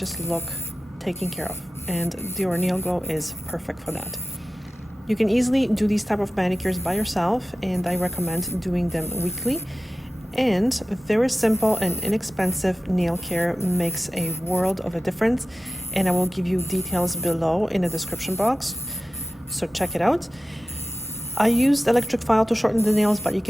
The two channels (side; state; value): both; normal; correlation 0.95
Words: look taken care of, and Dior Nail Glow is perfect for that. You can easily do these type of manicures by yourself, and I recommend doing them weekly. And very simple and inexpensive nail care makes a world of a difference, and I will give you details below in the description box, so check it out. I used electric file to shorten the nails, but you